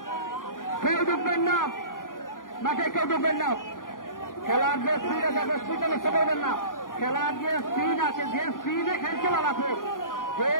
কেউ ঢুকবেন না, মাঠে কেউ ঢুকবেন না। খেলার যে স্পিড আছে স্পিডে নষ্ট করবেন না, খেলার যে স্পিড আছে, যে স্পিডে খেলছে লালাপুর, যে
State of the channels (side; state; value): right; late; 0.90 ms